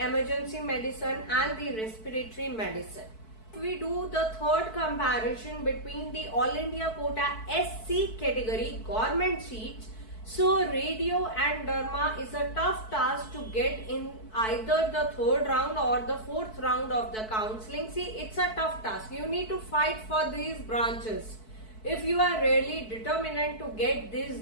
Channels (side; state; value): right; late; 4.6 ms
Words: medicine and the respiratory medicine. If we do the third comparison between the all India quota SC category government seats, so radio and derma is a tough task to get in either the third round or the fourth round of the counseling. See, it's a tough task. You need to fight for these branches if you are really determined to get these